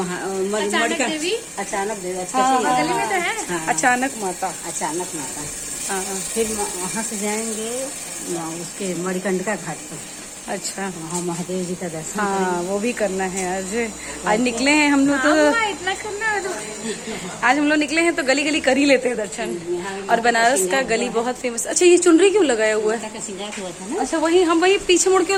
अचानक देवी। बगल में तो है। हाँ, अचानक माता। अचानक माता। हाँ। फिर वहाँ से जाएंगे उसके मणिकंडिका घाट पर। अच्छा, वहाँ महादेव जी का दर्शन। हाँ वो भी करना है। आज निकले हैं हम लोग तो इतना करना है तो आज हम लोग निकले हैं तो गली गली कर ही लेते हैं दर्शन। और बनारस का गली बहुत फेमस। अच्छा, ये चुनरी क्यों लगाया हुआ है? श्रृंगार हुआ था ना। अच्छा, वही हम वही पीछे मुड़ के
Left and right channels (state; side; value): identical; both; correlation 1.00